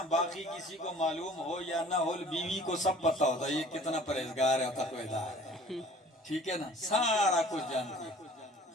باقی کسی کو معلوم ہو یا نہ ہو، بیوی کو سب پتا ہوتا ہے یہ کتنا پرہیزگار ہے، تقویدار ہے، ٹھیک ہے نا، سارا کچھ جانتی ہے۔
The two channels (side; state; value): both; normal; correlation 0.50